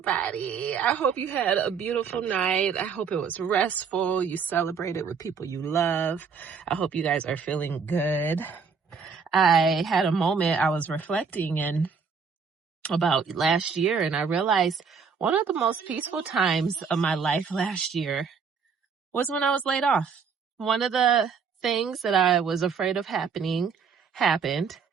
I hope you had a beautiful night. I hope it was restful. You celebrated with people you love. I hope you guys are feeling good. I had a moment I was reflecting about last year, and I realized one of the most peaceful times of my life last year was when I was laid off. One of the things that I was afraid of happening happened.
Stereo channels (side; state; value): left; quieter; 5.8 dB